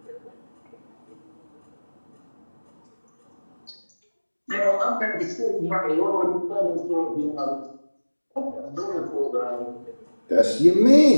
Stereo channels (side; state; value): both; inverted; correlation -1.00